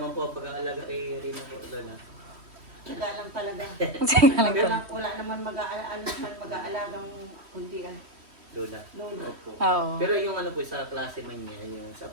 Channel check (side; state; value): left; late; 3.1 ms